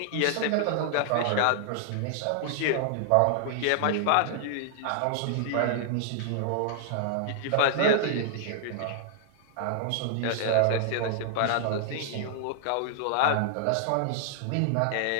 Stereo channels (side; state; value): both; different; correlation 0.00